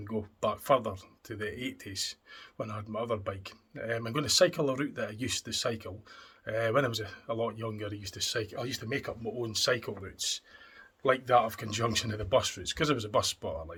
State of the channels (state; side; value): identical; both; correlation 1.00